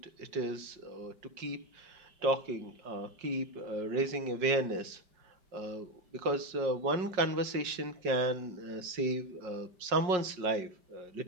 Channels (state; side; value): late; left; 5.5 ms